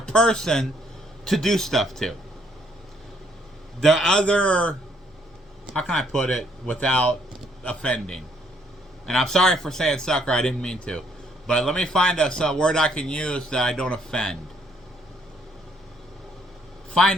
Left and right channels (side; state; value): both; normal; correlation 0.68